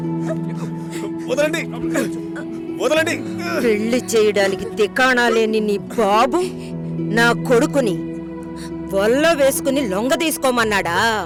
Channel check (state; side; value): identical; both; correlation 1.00